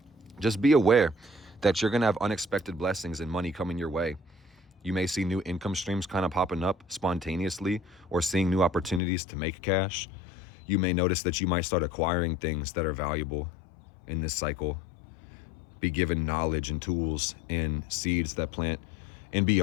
just be aware that you're going to have unexpected blessings and money coming your way. You may see new income streams kind of popping up spontaneously or seeing new opportunities to make cash. You may notice that you might start acquiring things that are valuable in this cycle, be given knowledge and tools and seeds that plant And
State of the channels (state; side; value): drops out; right; at 9.0 s